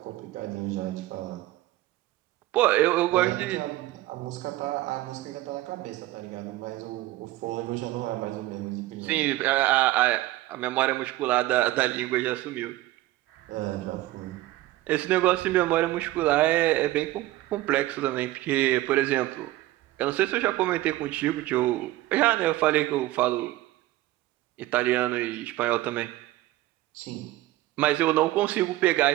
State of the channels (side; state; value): left; quieter; 16.7 dB